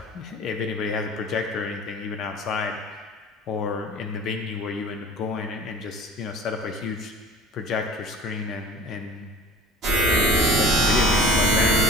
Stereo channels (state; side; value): normal; both; correlation 0.40